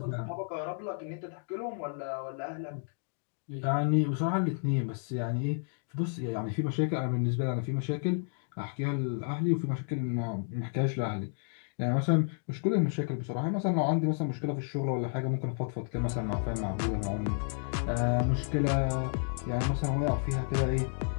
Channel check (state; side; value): silent; right; digital silence